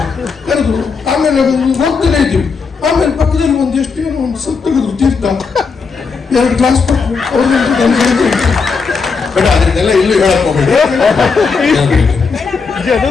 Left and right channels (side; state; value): right; quieter; 5.0 dB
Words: ಕರೆದ್ರು. ಆಮೇಲೆ ಹೋಗ್ತಾನೆ ಇದ್ದೀವಿ. ಆಮೇಲೆ ಪಕ್ಕದಲ್ಲಿ ಒಂದೆಷ್ಟೇನು ಒಂದು ಸ್ವಲ್ಪ ತೆಗೆದ್ರು ತೀರ್ಥ, 2 ಗ್ಲಾಸ್ ಕೊಟ್ಟು ಬೇಡ ಅದನ್ನೆಲ್ಲ ಇಲ್ಲೂ ಹೇಳಕ್ ಹೋಗ್ಬೇಡಿ.